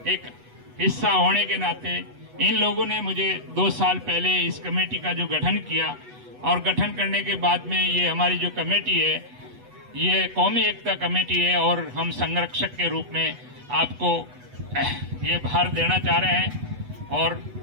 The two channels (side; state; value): left; late; 8.1 ms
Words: एक हिस्सा होने के नाते, इन लोगों ने मुझे 2 साल पहले इस कमेटी का जो गठन किया और गठन करने के बाद में ये हमारी जो कमेटी है ये कौमी एकता कमेटी है और हम संरक्षक के रूप में आपको ये भार देना चाह रहे हैं। और